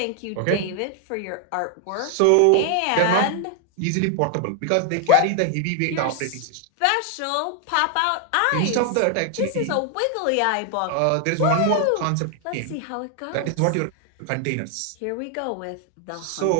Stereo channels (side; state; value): both; different; correlation 0.00